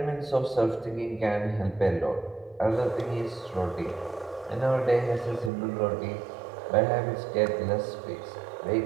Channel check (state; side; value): drops out; left; at 5.5 s